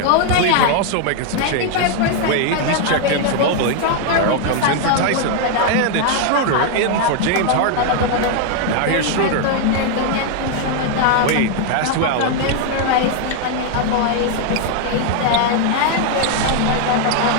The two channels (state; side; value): different; both; correlation 0.00